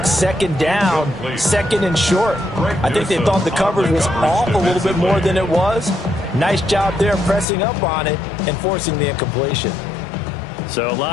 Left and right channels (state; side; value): drops out; right; at 7.5 s